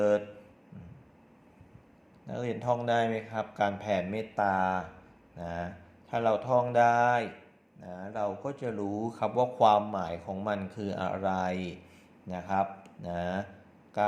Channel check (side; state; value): both; identical; correlation 1.00